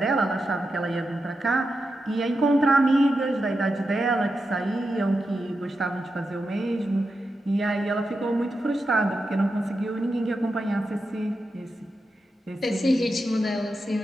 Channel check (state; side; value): normal; both; correlation 0.88